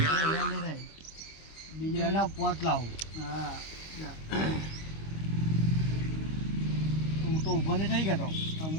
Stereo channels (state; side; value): late; right; 25 ms